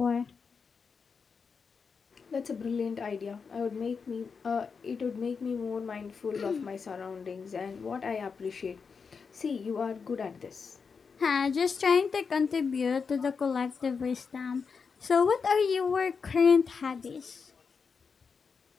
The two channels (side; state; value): right; quieter; 5.5 dB